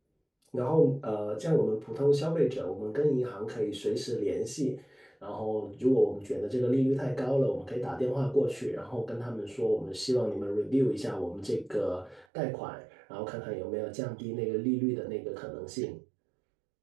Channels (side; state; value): left; drops out; at 12.2 s